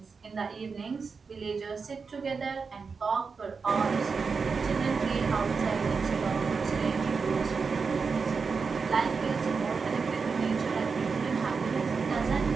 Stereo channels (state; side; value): quieter; left; 5.1 dB